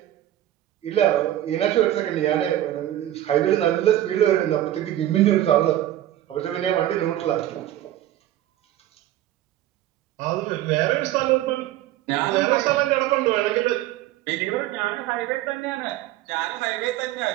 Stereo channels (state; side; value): quieter; left; 13.3 dB